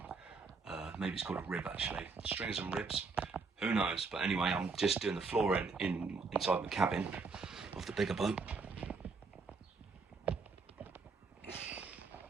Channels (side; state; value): left; quieter; 4.4 dB